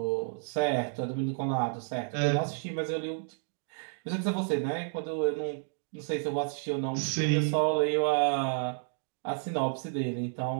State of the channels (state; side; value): silent; left; 57 dB below the other